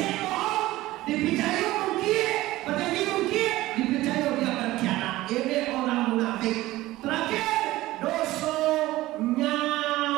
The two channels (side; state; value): left; quieter; 17.2 dB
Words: bohong dipijayo mungkin berjanji mungkin dipijayo dia berkhianat. Ini orang munafik. Terakhir dosa